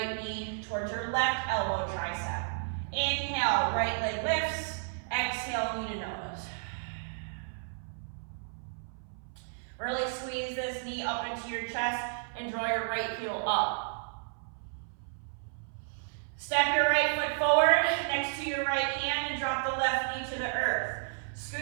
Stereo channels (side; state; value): left; silent; 56 dB below the other